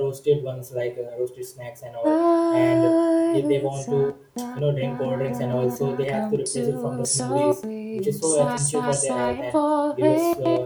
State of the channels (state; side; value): identical; both; correlation 1.00